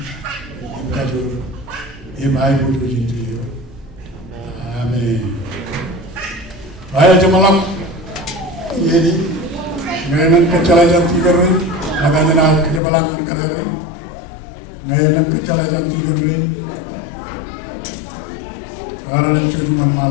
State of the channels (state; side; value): drops out; right; at 12.8 s